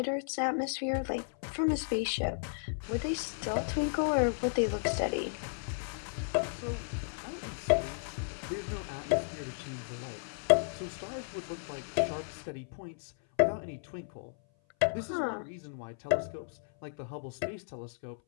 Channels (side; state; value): right; silent; 55 dB below the other